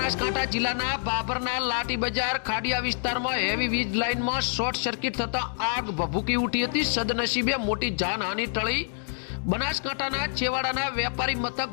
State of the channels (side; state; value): right; silent; digital silence